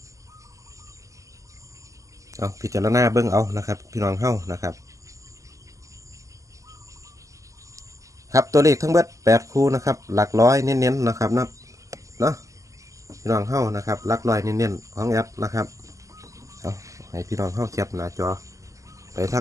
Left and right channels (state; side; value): late; left; 0.16 ms